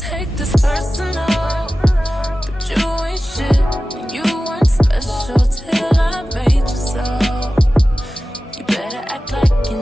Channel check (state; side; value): normal; both; correlation 0.95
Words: this personal, but you ain't shit and you weren't special till I made you so. You better act like you